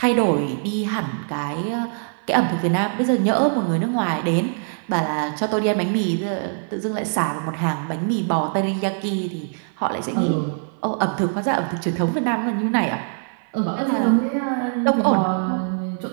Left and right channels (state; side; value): silent; left; 57 dB below the other